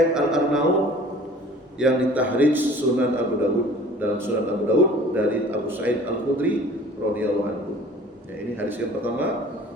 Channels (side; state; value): both; normal; correlation 0.47